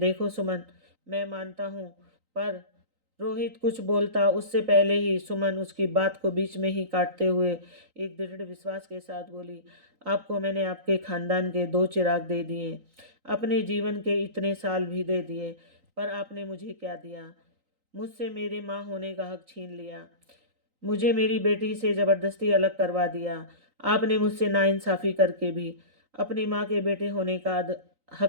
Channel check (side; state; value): left; late; 3.9 ms